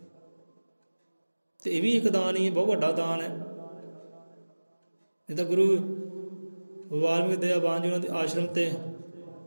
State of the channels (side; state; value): both; inverted; correlation -1.00